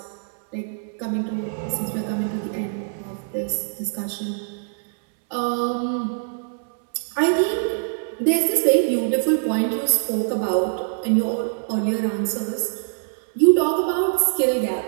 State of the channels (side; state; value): left; silent; 63 dB below the other